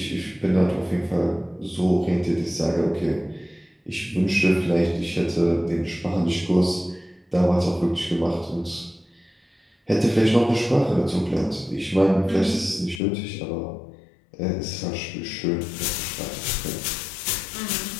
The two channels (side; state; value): right; drops out; at 13.0 s